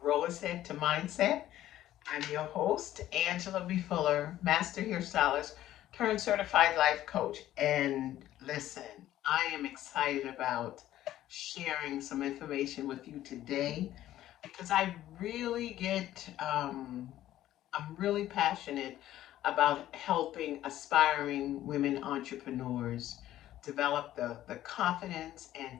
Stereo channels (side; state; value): right; quieter; 13.3 dB